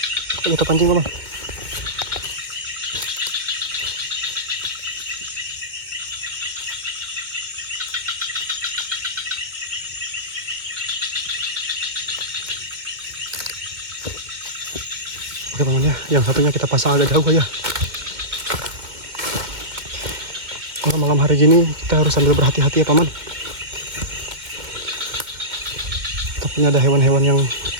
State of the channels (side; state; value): left; late; 2.2 ms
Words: kita pancing paman. Oke paman ya, yang satunya kita pasang agak jauh aja. Kalau malam hari gini kita harus sambil berhati-hati ya paman. Takutnya ada hewan-hewan yang